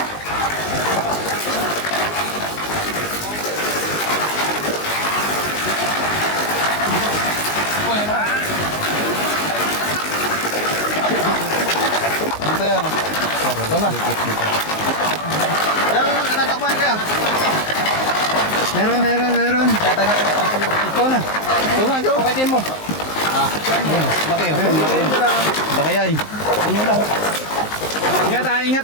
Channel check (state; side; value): late; right; 19 ms